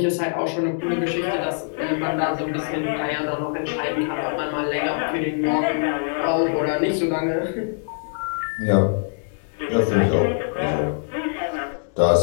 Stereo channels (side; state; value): right; silent; digital silence